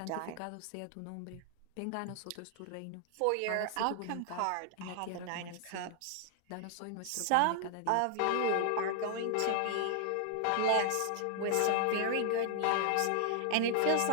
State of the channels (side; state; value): both; different; correlation 0.00